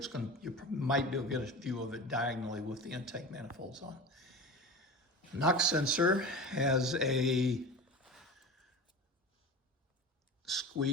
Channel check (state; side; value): normal; both; correlation 0.31